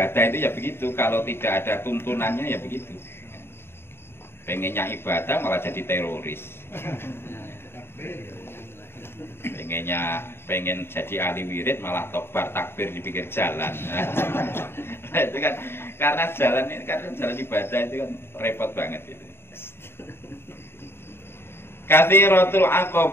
itu ya begitu, kalau tidak ada tuntunannya ya begitu. Pengennya ibadah malah jadi teroris. Pengen jadi ahli wirid malah tobar takbir di pinggir jalan. Nah, itu kan karena jalan ibadah itu kan repot banget itu. Kathiratul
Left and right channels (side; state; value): right; late; 0.11 ms